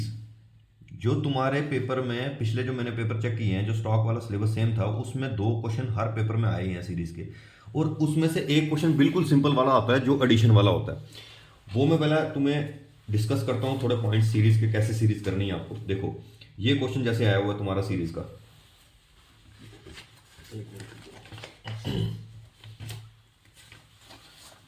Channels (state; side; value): identical; both; correlation 1.00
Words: जो तुम्हारे पेपर में पिछले जो मैंने पेपर चेक किए हैं, जो स्टॉक वाला सिलेबस सेम था, उसमें 2 क्वेश्चन हर पेपर में आए हैं सीरीज के, और उसमें से एक क्वेश्चन बिल्कुल सिंपल वाला आता है जो एडिशन वाला होता है। वो मैं पहले तुम्हें डिस्कस करता हूँ थोड़े पॉइंट सीरीज के, कैसे सीरीज करनी है आपको। देखो ये क्वेश्चन जैसे आया हुआ है तुम्हारा सीरीज का,